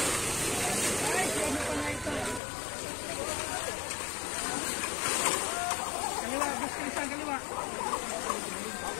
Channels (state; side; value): drops out; right; at 2.4 s